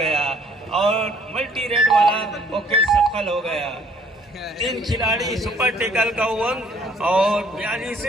और मल्टी रेड वाला वो कैच सफल हो गया। तीन खिलाड़ी सुपर टेकल का अंक और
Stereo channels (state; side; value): normal; both; correlation 0.60